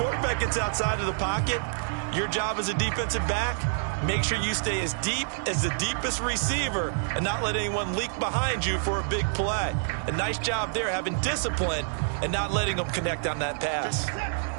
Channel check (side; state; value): left; silent; digital silence